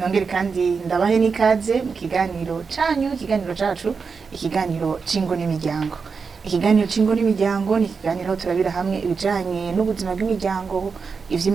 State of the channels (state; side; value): quieter; left; 5.2 dB